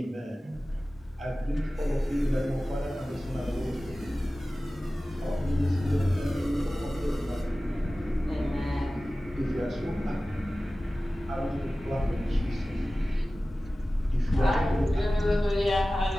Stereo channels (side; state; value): both; normal; correlation 0.96